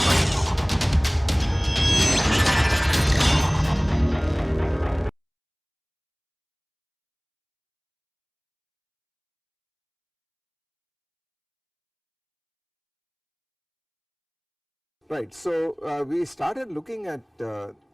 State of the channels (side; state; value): both; identical; correlation 1.00